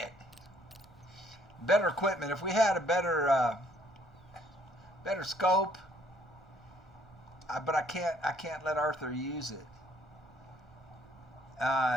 Better equipment. If we had a better scope, but I can't let Arthur use it.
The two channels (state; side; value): noise; right; rumble, 26 dB below the sound